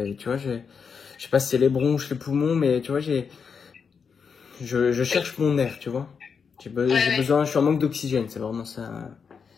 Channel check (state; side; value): quieter; right; 6.1 dB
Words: tu vois, je sais pas si c'est les bronches, les poumons, mais tu vois, je Oui. cherche mon air, tu vois. Ouais, J'ai ouais. besoin, je suis en manque d'oxygène, c'est vraiment ça.